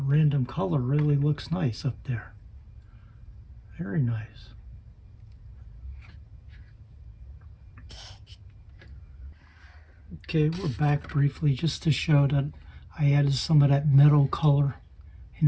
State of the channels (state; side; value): identical; both; correlation 1.00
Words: random color really looks nice up there. Very nice. Okay, we're back briefly just to show that I added some of that meadow color in